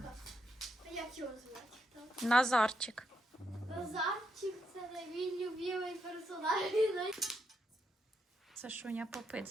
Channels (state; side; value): normal; both; correlation 0.80